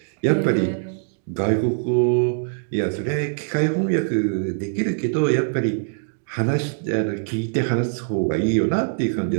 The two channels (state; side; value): silent; left; digital silence